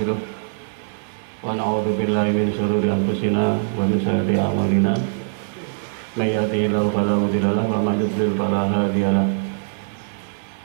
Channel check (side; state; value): left; silent; digital silence